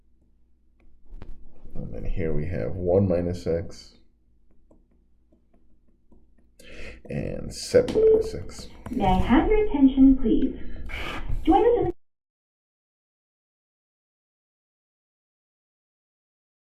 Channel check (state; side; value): identical; both; correlation 1.00